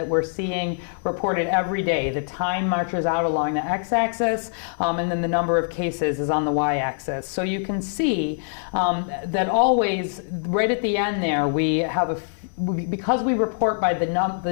we're seeing reported every day. The time marches out along the x-axis, and then the number of cases is on the y-axis. So you can see that always, right at the end there, we have because we report by the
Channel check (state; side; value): silent; right; 58 dB below the other